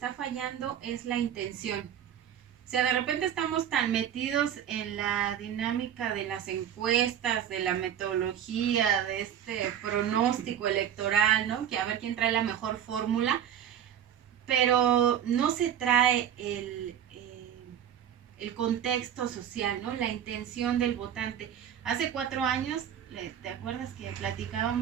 fallando es la intención. O sea, de repente estamos tan metidos en la dinámica de las encuestas, de la metodología, de este pronóstico electoral, ¿no? Que a ver quién trae la mejor fórmula, pero no se trae el contexto social, ¿no? La intención del votante. Hace 4 años, ¿te acuerdas que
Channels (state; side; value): quieter; left; 9.6 dB